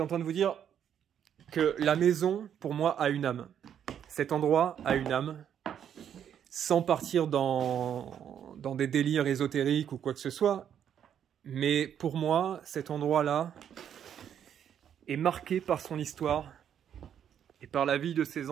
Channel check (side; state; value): left; quieter; 9.1 dB